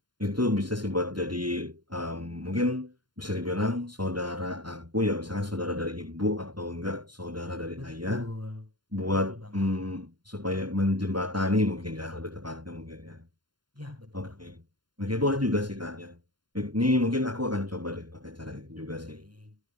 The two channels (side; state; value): left; late; 0.71 ms